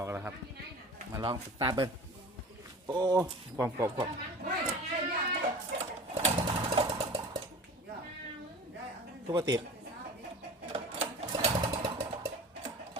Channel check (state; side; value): normal; both; correlation 0.39